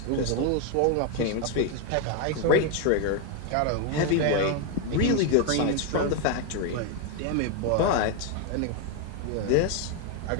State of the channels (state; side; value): different; both; correlation 0.01